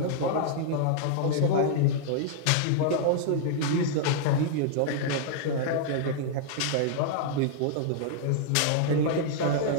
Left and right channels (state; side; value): different; both; correlation -0.01